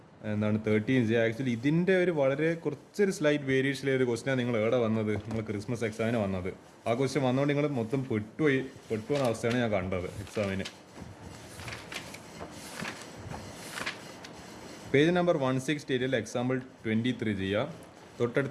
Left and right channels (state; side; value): identical; both; correlation 1.00